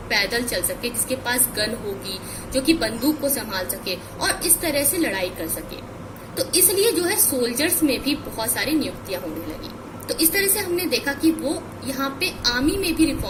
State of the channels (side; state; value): both; identical; correlation 1.00